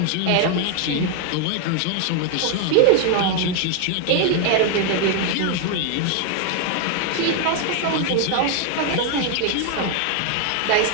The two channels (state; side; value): different; both; correlation 0.01